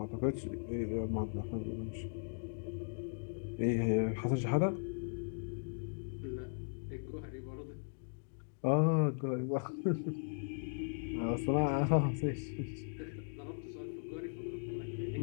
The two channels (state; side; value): silent; right; digital silence